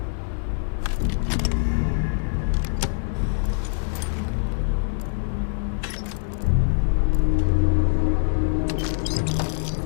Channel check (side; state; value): right; silent; digital silence